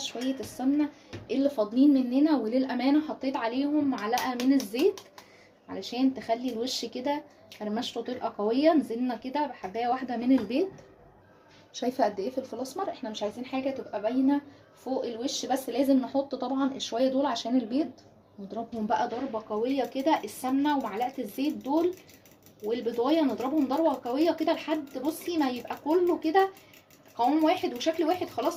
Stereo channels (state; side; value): identical; both; correlation 1.00